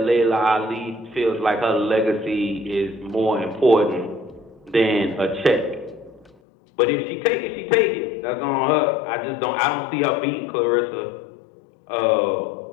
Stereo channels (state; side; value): drops out; right; at 6.3 s